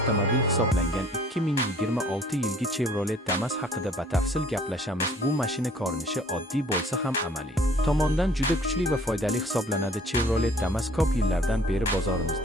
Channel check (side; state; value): both; normal; correlation 0.55